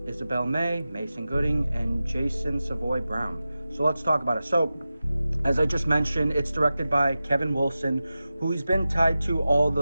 Isabel May, Mason Gooding, and Jason Savoy Brown. So let's talk about it. So, as I just mentioned, it's directed by Kevin Wilson, who he's been tied to all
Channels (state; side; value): inverted; both; correlation -0.94